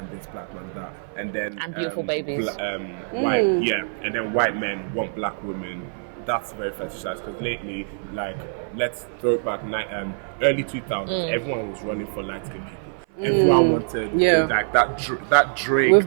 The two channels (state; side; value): silent; left; 58 dB below the other